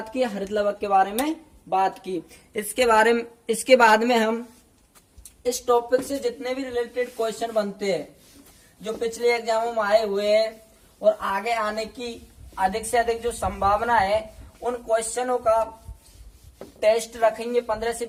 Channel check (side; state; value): both; identical; correlation 1.00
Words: की, हरित लवक के बारे में बात की। इसके बाद में हम इस टॉपिक से जितने भी रिलेटेड क्वेश्चन बनते हैं जो पिछले एग्जामों में आए हुए हैं और आगे आने की अधिक से अधिक जो संभावना है उन क्वेश्चनों का टेस्ट रखेंगे 15 से